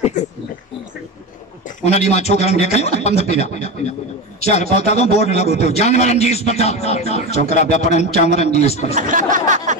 उन ॾींहुं मां छोकरनि खे खयो पंध पिया चार पहुता तो बोर्ड लगो तो जानवरन जी अस्पताल छोकरा पिया पढ़नि जानवरन जी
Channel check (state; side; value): normal; both; correlation 0.21